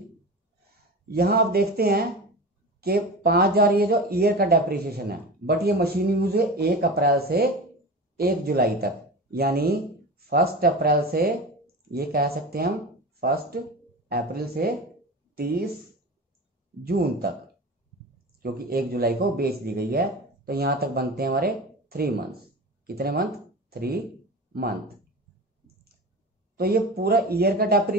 यहां आप देखते हैं कि 5,000 ये जो ईयर का डेप्रिसिएशन है, बट ये मशीन यूज है 1 अप्रैल से 1 जुलाई तक, यानी 1 अप्रैल से, ये कह सकते हैं हम 1 अप्रैल से 30 जून तक, क्योंकि 1 जुलाई को बेच दी गई है। तो यहां तक बनते हैं हमारे 3 मंथ्स। कितने मंथ? 3 मंथ। तो ये पूरा ईयर का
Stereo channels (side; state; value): both; normal; correlation 0.30